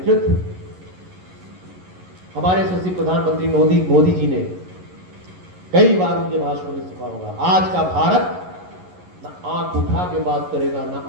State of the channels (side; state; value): left; late; 11 ms